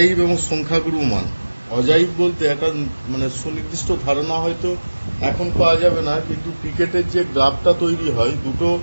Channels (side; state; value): both; inverted; correlation -1.00